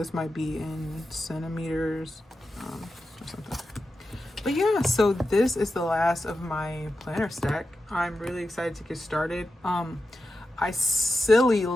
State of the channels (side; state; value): both; normal; correlation 0.91